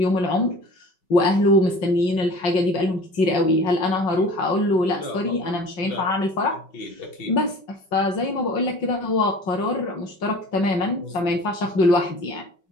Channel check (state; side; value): late; right; 5.3 ms